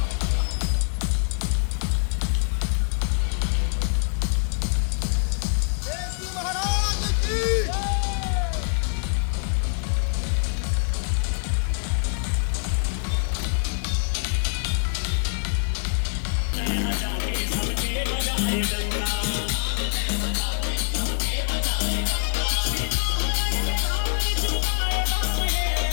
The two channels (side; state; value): right; silent; digital silence